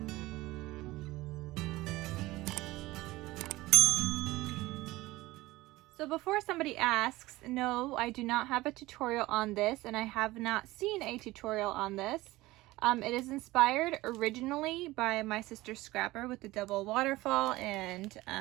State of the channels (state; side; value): quieter; left; 18.9 dB